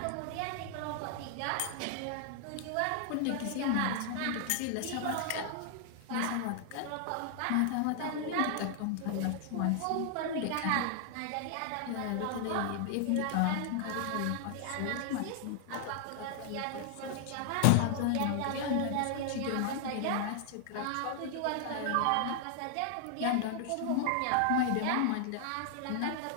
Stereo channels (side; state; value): both; different; correlation 0.00